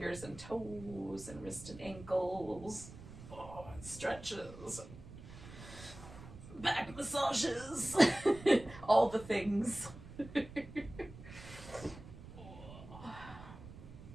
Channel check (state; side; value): noise; right; rumble, 15 dB below the sound